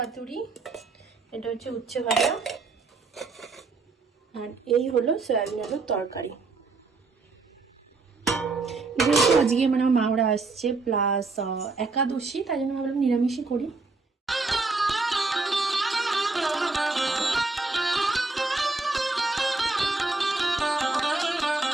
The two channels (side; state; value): left; quieter; 3.8 dB